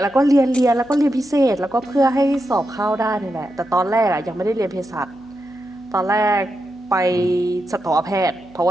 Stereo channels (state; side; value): noise; right; hum, 28 dB below the sound